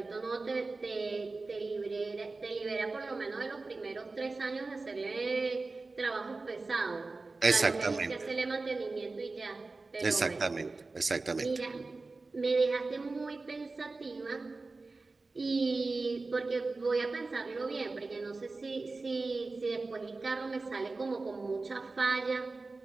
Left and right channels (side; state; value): left; quieter; 3.6 dB